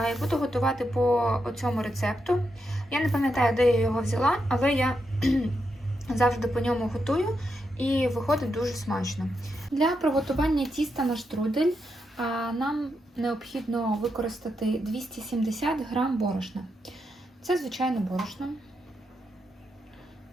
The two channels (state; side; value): normal; both; correlation 0.84